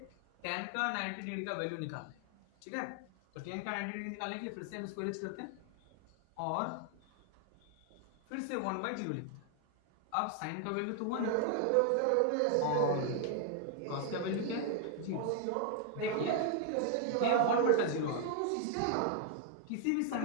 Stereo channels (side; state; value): both; different; correlation 0.00